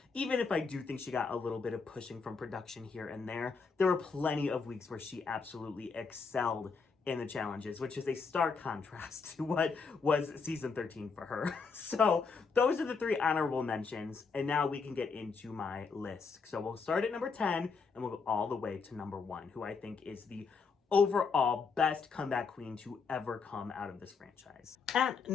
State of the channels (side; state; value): right; quieter; 5.0 dB